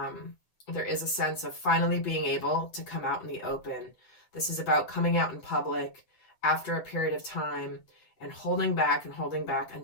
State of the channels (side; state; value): right; late; 8.4 ms